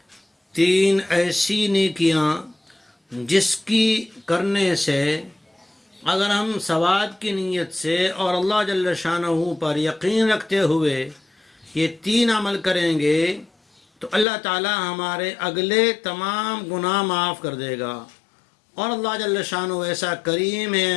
3 ایسی نیکیاں جس کی کرنے سے اگر ہم ثواب کی نیت سے اور اللہ جل شانہ پر یقین رکھتے ہوئے یہ 3 عمل کریں گے تو اللہ تعالی ہمارے اگلے تمام گناہ معاف کر دے گا. اور اللہ جل شانہ ایسا کریم ہے،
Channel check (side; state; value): right; drops out; at 14.2 s